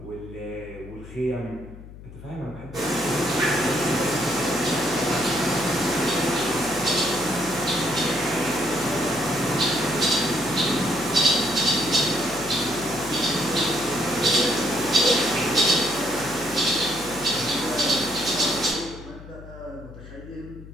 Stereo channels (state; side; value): noise; left; hum, 16 dB below the sound